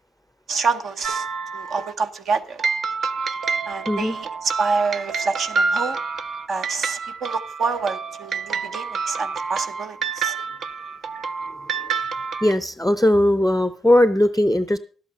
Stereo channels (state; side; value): normal; both; correlation 0.86